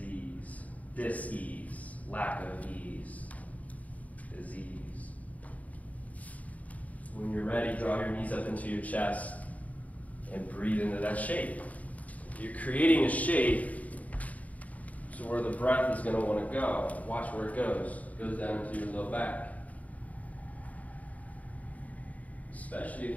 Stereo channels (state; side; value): late; right; 0.071 ms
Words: Dis-ease. Lack of ease. Disease. When you're ready, draw your knees up into your chest and breathe into that shape. You're creating a shape so where the breath is going to want to go. Watch where it goes. It goes down into your low back. Especially